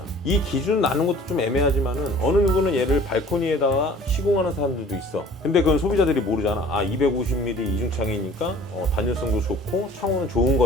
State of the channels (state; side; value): normal; both; correlation 0.49